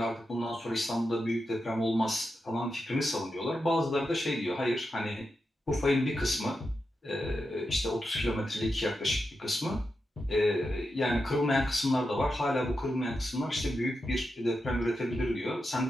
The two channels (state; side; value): normal; both; correlation 0.88